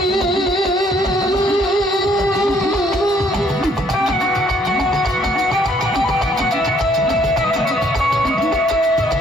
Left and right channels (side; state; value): both; normal; correlation 0.65